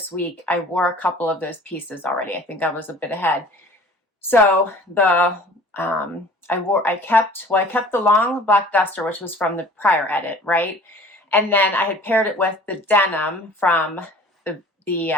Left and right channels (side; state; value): both; normal; correlation 0.47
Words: week, I wore a couple of those pieces already. I think I was a bit ahead. So I kept the long black duster, which was from the prior edit, right? And then I had paired it with the denim from the